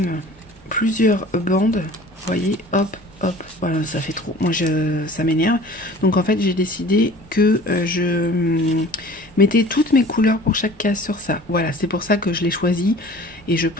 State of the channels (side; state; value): both; normal; correlation 0.45